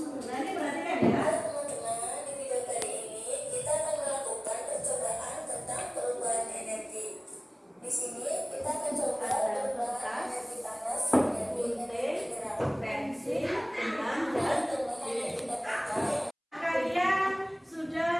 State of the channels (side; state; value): both; identical; correlation 1.00